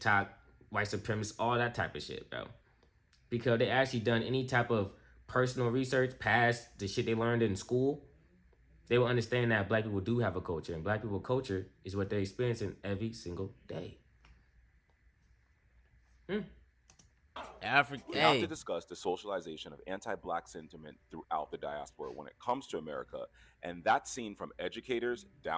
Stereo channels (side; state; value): both; identical; correlation 1.00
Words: white supremacists, all that type of shit, bro. Because they actually done any type of personal research past the shit they learned in school, they will understand that Black people do have a culture, and Black people culture is what they're experiencing every single day. We have to discuss the socialization of anti-Black sentiment throughout the diaspora when it comes to America, and that's seen from educators